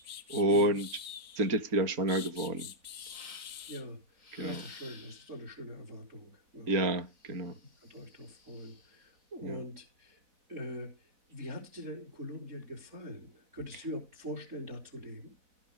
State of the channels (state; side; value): late; left; 4.0 ms